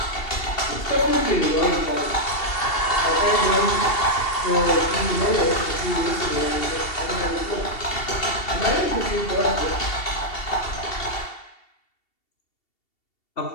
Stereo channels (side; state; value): right; late; 2.7 ms